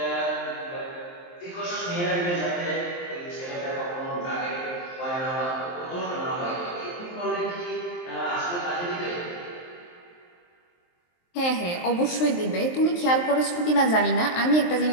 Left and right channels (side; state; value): right; late; 23 ms